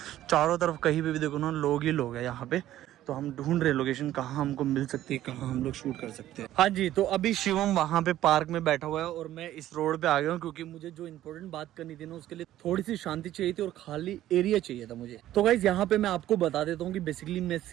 चारों तरफ कहीं पे भी देखो ना लोग ही लोग हैं यहाँ पे। तो हम ढूंढ रहे हैं लोकेशन कहाँ हमको मिल सकती है, कहाँ हम लोग शूट कर सकते हैं। हाँ जी, तो अभी शिवम वहाँ पे पार्क में बैठा हुआ है और मैं इस रोड पे आ गया हूँ, क्योंकि मुझे जो इम्पोर्टेंट बात करनी थी ना, उसके लिए थोड़ी सी शांति चाहिए थी और खाली एरिया चाहिए था मुझे। तो गाइज यहाँ पे मैं आपको बता देता हूँ कि बेसिकली मैं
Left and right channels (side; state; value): left; quieter; 13.4 dB